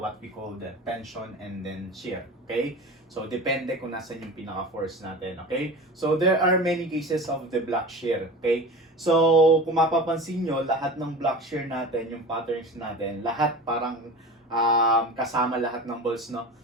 we call the tension and then shear, okay? So, depende kung nasan yung pinaka-force natin, okay? So, there are many cases of the block shear, okay? So, kung mapapansin nyo, lahat ng block shear natin, yung patterns natin, lahat parang kasama lahat ng balls, no?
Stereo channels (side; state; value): both; normal; correlation 0.33